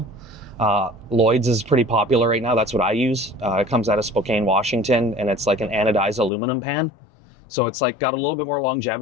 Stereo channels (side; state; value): right; drops out; at 6.3 s